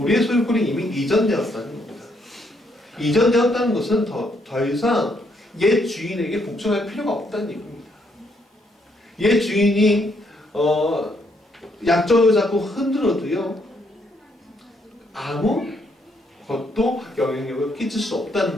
소유권이 이미 이전되었다는 겁니다. 이전되었다는 것은 더 이상 옛 주인에게 복종할 필요가 없다는 얘기입니다. 옛 주인이 약점을 잡고 흔들어도요 아무 것도 영향력을 끼칠 수 없다는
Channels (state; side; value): normal; both; correlation 0.73